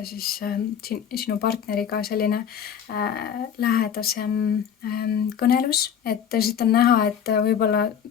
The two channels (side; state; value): right; quieter; 8.4 dB